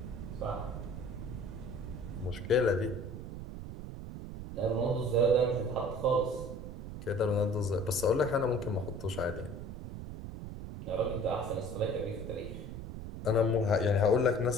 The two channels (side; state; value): right; noise; rumble, 9 dB below the sound